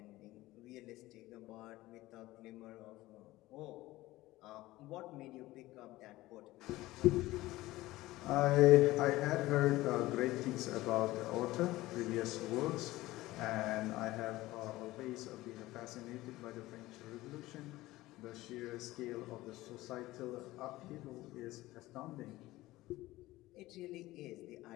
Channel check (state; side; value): quieter; right; 17.8 dB